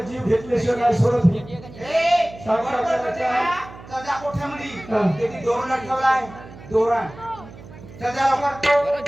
घेतल्याशिवाय नाही सोडत ही. सजा कोठ्यामध्ये त्याची दोरण ठेवलाय. दोरण सजा लवकर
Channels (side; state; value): right; noise; hum, 17 dB below the sound